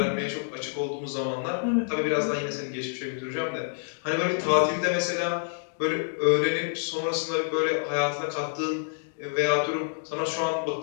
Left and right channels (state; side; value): silent; right; digital silence